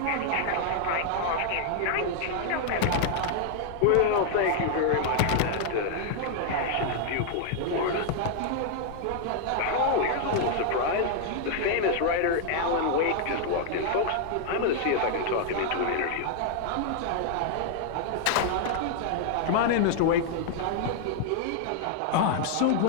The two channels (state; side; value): different; both; correlation 0.00